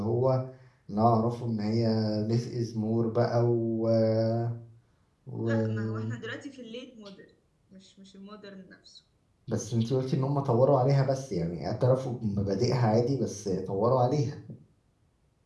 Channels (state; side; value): identical; both; correlation 1.00